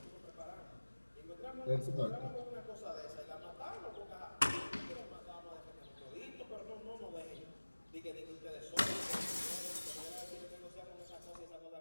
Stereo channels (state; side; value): inverted; both; correlation -1.00